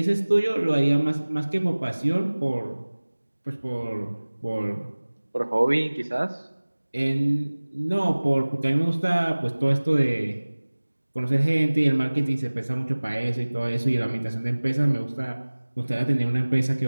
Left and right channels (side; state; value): both; inverted; correlation -1.00